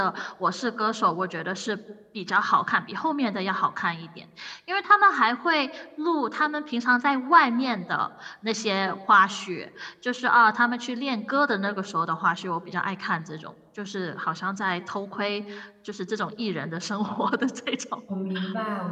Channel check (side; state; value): both; identical; correlation 1.00